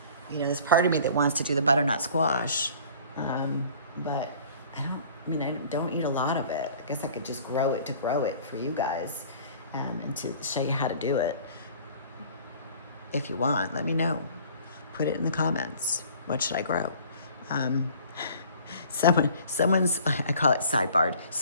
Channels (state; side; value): inverted; both; correlation -0.49